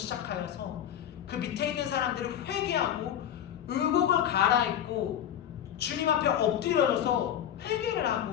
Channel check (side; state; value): right; quieter; 10.2 dB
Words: 그 밑에 있는 사람들을 회개하고 의복을 갈아입고 주님 앞에 엎드려져서 회개를